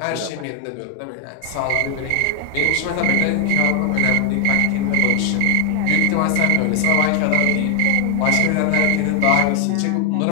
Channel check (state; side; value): different; both; correlation 0.00